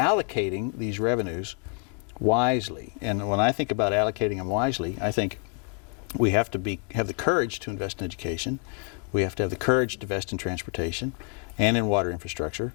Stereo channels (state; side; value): quieter; right; 33.9 dB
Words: these revenues wisely. And when I think about allocating them wisely, I think we have to have the courage to invest in education. We have to have the courage to invest in transportation and in water infrastructure.